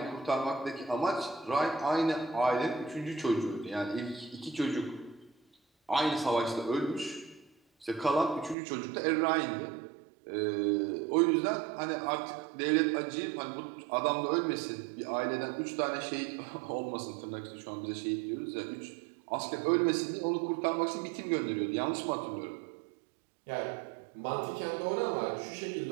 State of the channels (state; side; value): drops out; left; at 8.6 s